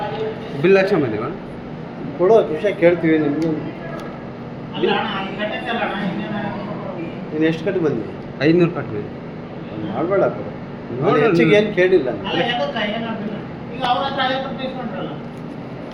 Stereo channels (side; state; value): both; identical; correlation 1.00